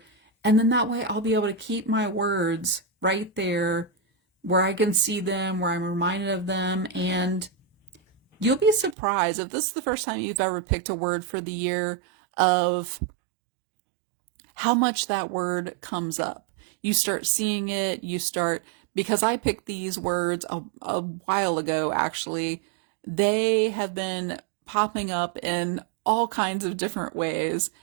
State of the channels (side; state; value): left; drops out; at 9.0 s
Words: And then that way I'll be able to keep my words right there where I can see them, where I'm reminded of them. And you'll be surprised if this is the first time you've ever picked a word for the year of how much that word comes up. You start seeing it, because I picked these words a while ago, actually. They have been popping up in all kinds of different ways,